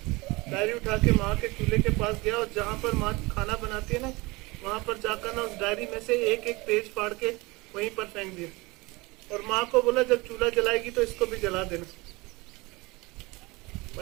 डायरी उठा के माँ के चूल्हे के पास गया और जहाँ पर माँ खाना बनाती है ना, वहां पर जाकर ना उस डायरी में से एक एक पेज फाड़ के वहीं पर फेंक दिया। और माँ को बोला जब चूल्हा जलाएगी तो इसको भी जला देना।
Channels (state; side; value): quieter; left; 23.7 dB